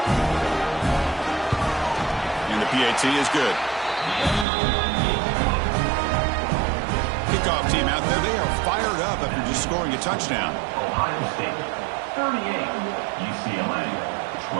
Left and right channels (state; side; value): drops out; left; at 4.5 s